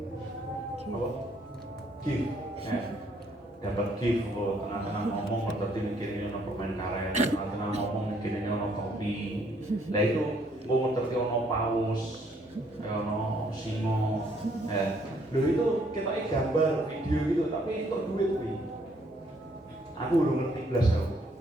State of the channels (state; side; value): normal; both; correlation 0.67